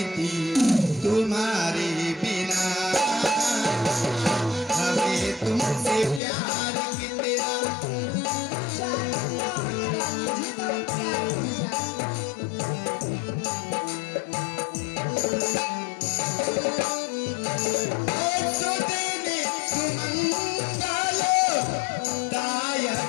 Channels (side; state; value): right; drops out; at 6.2 s